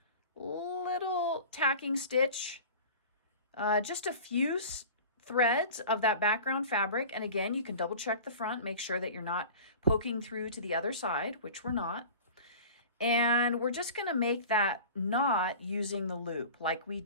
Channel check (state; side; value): inverted; both; correlation -0.38